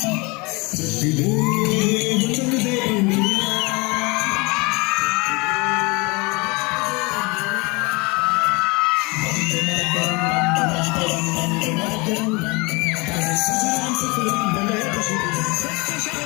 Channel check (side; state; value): right; quieter; 26.9 dB